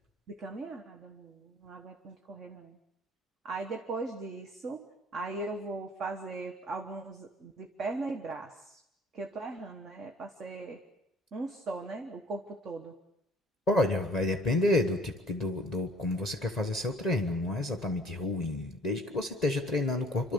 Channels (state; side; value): normal; both; correlation 0.55